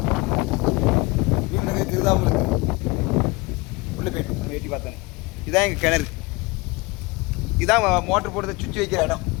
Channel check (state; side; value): quieter; right; 24.6 dB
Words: மீன் நடக்குது தெரியுதா உங்களுக்கு? உள்ள போயிட்டு நம்ம எட்டி பார்த்தேன். இதான் எங்கள் கிணறு. இதான் மோட்டர் போடுறத சுவிட்ச் வைக்கிற இடம்.